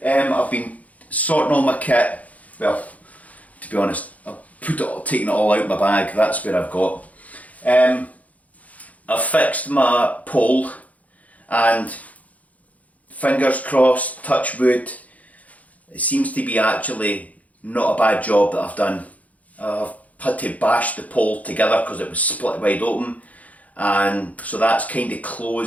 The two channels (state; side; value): late; right; 0.071 ms